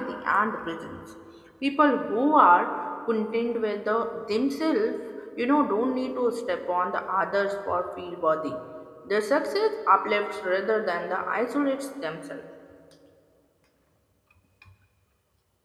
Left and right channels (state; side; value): identical; both; correlation 1.00